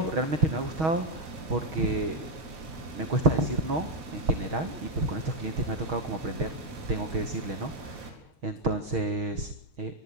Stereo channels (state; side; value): late; left; 6.3 ms